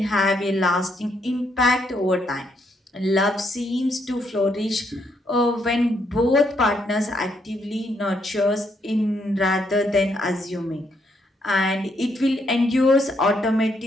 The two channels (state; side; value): normal; both; correlation 0.74